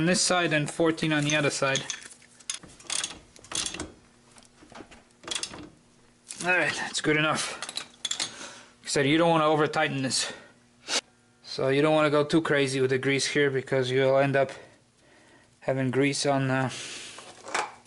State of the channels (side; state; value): both; identical; correlation 1.00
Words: this side and 14 on the other side. Alright, that's good enough. Like I said, you don't want to over tighten this. So you don't want to go too crazy with the grease here, because you'll end up having grease on the